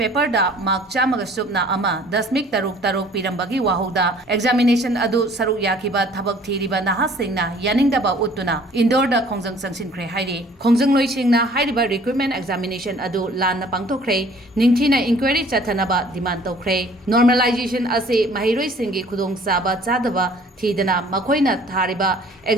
da mark chamaga subna ama dasmik taruk Pirambagi wahoda examination adu saruk yakiba Thabak thiriba nahasingna yaningdaba utuna indoor da khongjang sangsinkhre hairi khongjang loisingna hairiba recruitment examination adu lanna pangthokre ningthina inquiry chathanaba demand tokre normalization ase mahiroi singi khudong saba chadaba thidana makoina thariba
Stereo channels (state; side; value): normal; both; correlation 0.54